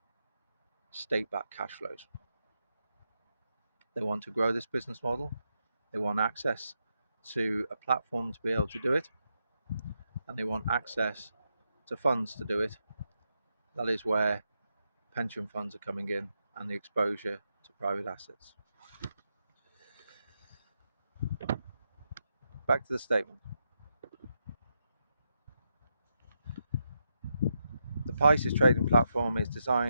state-backed cash flows. They want to grow this business model. They want access to a platform to be able to do it, and they want access to funds to do it. That is where pension funds are coming in and the exposure to private assets. Back to the statement. The Pisces trading platform is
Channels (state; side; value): inverted; both; correlation -0.83